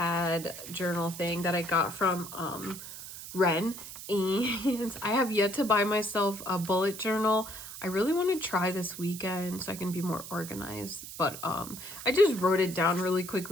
journal thing that I got from Ren, and I have yet to buy myself a bullet journal. I really want to try this weekend so I can be more organized, but I just wrote it down really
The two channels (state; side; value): noise; right; hiss, 11 dB below the sound